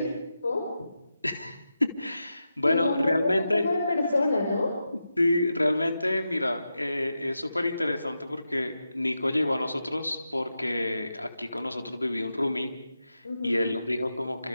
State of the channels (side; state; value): both; inverted; correlation -0.89